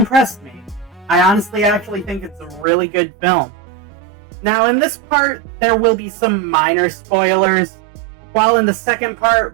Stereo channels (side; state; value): left; drops out; at 2.7 s